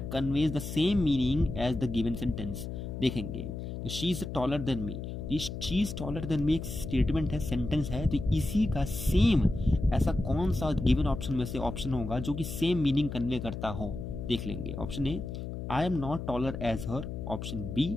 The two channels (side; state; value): left; noise; hum, 6 dB below the sound